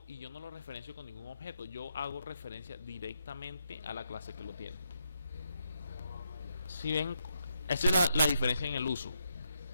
y yo no lo referencio con ningún objeto. Yo hago referencia directamente a la clase que lo tiene. Si ven, esa es la diferencia en el uso.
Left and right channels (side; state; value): both; inverted; correlation -0.79